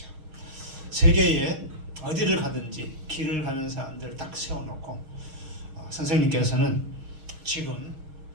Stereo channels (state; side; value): late; left; 6.4 ms